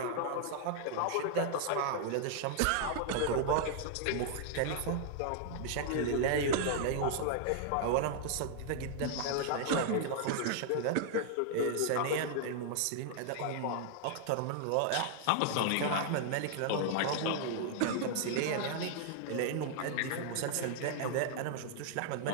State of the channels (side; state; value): both; different; correlation -0.01